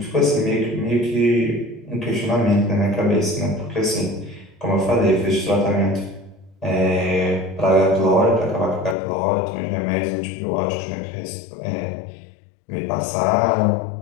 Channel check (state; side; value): drops out; right; at 9.0 s